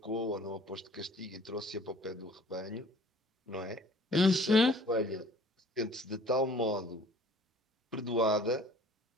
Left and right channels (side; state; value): both; normal; correlation 0.52